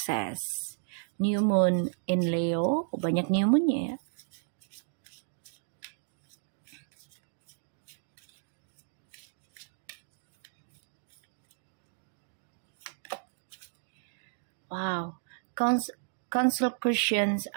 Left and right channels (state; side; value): silent; left; digital silence